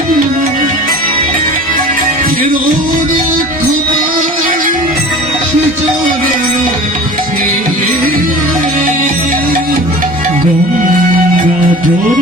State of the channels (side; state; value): both; normal; correlation 0.40